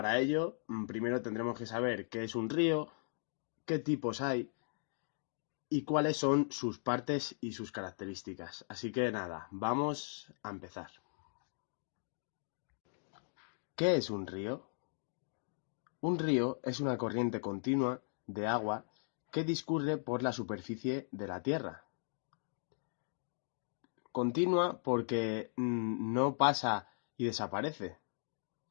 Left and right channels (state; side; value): silent; right; digital silence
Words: ello, primero tendremos que saber qué es un río, qué tipos hay y cuáles son sus partes y sus características. Así que nada, vamos a empezar. ¿Qué es un río? Un río es una corriente continua de agua que discurre por la superficie de la tierra. Continua porque no pasa y desaparece,